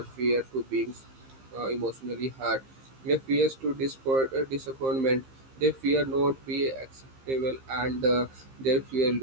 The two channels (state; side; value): late; left; 15 ms